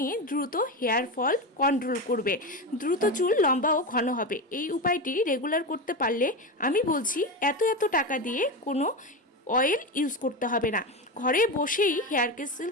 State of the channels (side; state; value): both; normal; correlation 0.18